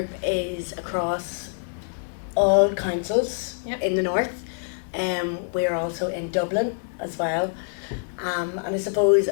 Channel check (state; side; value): silent; right; 61 dB below the other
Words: is across all councils in the north. We're also in Dublin as well. And I suppose